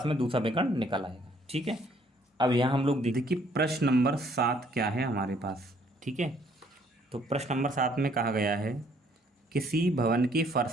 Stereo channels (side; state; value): both; normal; correlation 0.64